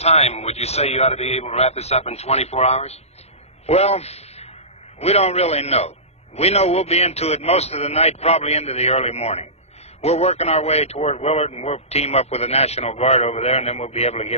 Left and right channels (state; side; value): late; right; 0.31 ms